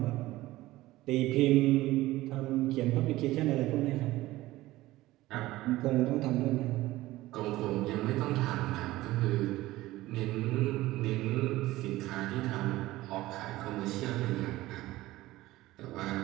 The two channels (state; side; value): quieter; left; 17.3 dB